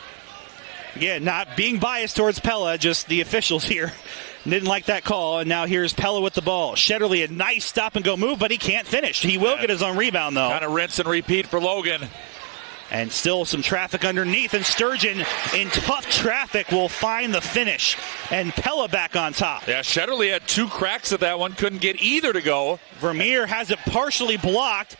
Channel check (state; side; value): quieter; left; 34.9 dB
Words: Again, not being biased towards Pella, just the officials here didn't like that call, and now here's Pella with the ball. Shetterly, a nice stop-and-go move, but he can't finish. He will get his own rebound, though. Kind of rinse and repeat for Logan. And still some traffic underneath, and Sturgeon in tough traffic will find the finish. And Pella back on top. Yeah, Shetterly had 2 cracks at that one, couldn't get either to go. Vermeer has it partially blocked,